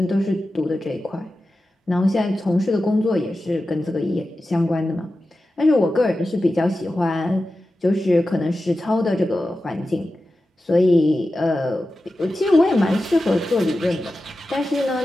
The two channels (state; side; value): normal; both; correlation 0.93